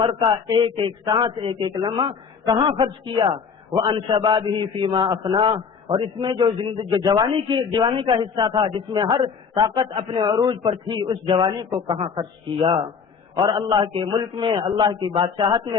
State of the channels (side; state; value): right; quieter; 6.0 dB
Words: کا ایک ایک سانس، ایک ایک لمحہ کہاں خرچ کیا. وَأَنْ شَبَابِهِ فِي مَا أَفْنَاهُ، اور اس میں جو جوانی کا حصہ تھا جس میں ہر طاقت اپنے عروج پر تھی، اس جوانی کو کہاں خرچ کیا. اور اللہ کے ملک میں، اللہ کی بادشاہت